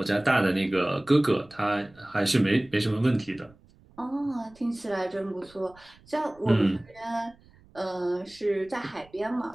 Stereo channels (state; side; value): noise; right; rumble, 27 dB below the sound